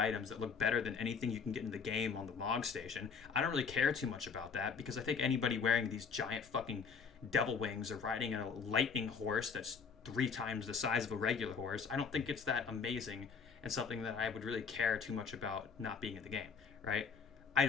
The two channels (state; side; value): quieter; right; 5.8 dB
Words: that look better than anything you can get in the game on the log station. I don't really care too much about that because I think anybody wearing these giant fucking devil wings or riding a lightning horse that's 3 times the size of a regular horse, I don't think it's that amazing and something that I would really care too much about not being in the game, right? I